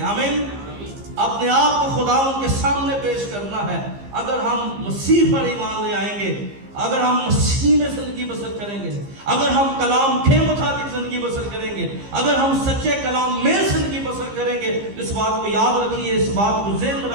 آمین۔ اپنے آپ کو خداوند کے سامنے پیش کرنا ہے۔ اگر ہم مسیح پر ایمان لے آئیں گے، اگر ہم مسیح میں زندگی بسر کریں گے، اگر ہم کلام کے مطابق زندگی بسر کریں گے، اگر ہم سچے کلام میں زندگی بسر کریں گے، اس بات کو یاد رکھیے، اس بات کو ذہن میں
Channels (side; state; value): left; late; 15 ms